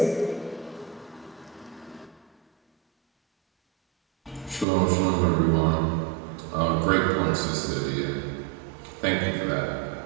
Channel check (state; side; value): drops out; left; at 4.7 s